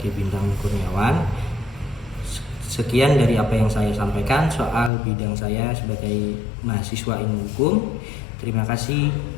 Bintang Kurniawan. Sekian dari apa yang saya sampaikan soal bidang saya sebagai mahasiswa ilmu hukum. Terima kasih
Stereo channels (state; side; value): drops out; right; at 4.9 s